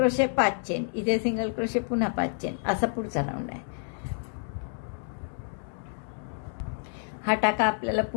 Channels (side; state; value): right; silent; digital silence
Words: 5 चेन, इथे सिंगल क्रोशे पुन्हा 5 चेन, असा पुढचा राऊंड आहे. हा टाका आपल्याला